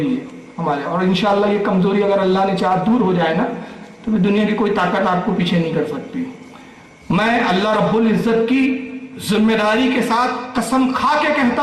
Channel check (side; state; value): both; identical; correlation 1.00